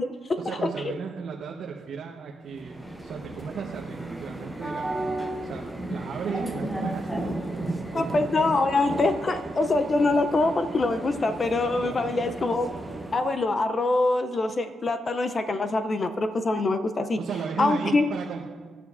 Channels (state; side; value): normal; both; correlation 0.85